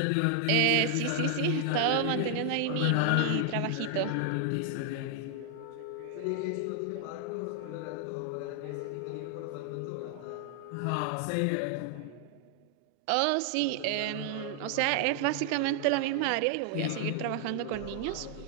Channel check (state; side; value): different; both; correlation 0.00